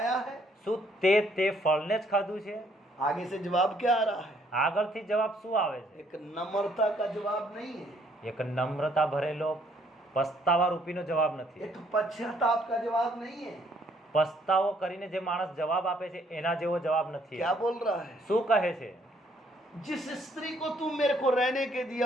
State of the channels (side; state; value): both; normal; correlation 0.66